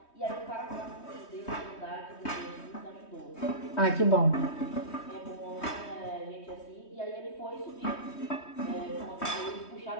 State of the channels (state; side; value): late; right; 3.2 ms